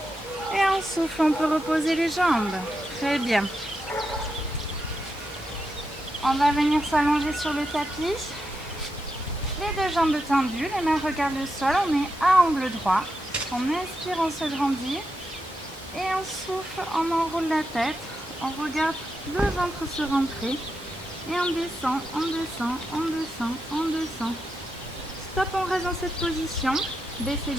Et on souffle, on peut reposer les jambes. Très bien. On va venir s'allonger sur le tapis. Les deux jambes tendues, les mains regardent le sol. On est à angle droit. On inspire, on se grandit. Et on souffle, on enroule la tête. On regarde le ventre se rentrer. Et on descend, on descend, on descend, on descend. Stop, on reste dans cette position. Baissez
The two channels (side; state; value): both; normal; correlation 0.86